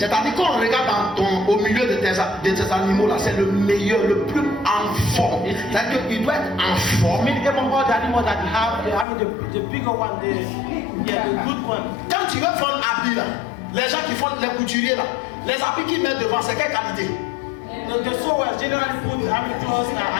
qu'on regarde au milieu de tes animaux là, c'est le meilleur, le plus en forme. C'est-à-dire qu'il doit être en forme. I mean, even all the animals that you have, the bigger one, the good one. Quand tu veux faire un habit là, les gens qui font les couturiers là, les habits qu'ils mettent devant, c'est quelle qualité? The sewers generally put clothes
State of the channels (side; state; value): right; drops out; at 9.1 s